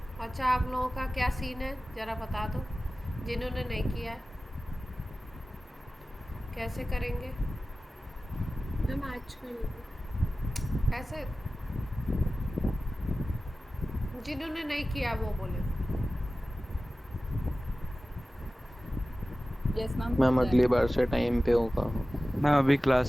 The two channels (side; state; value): both; normal; correlation 0.96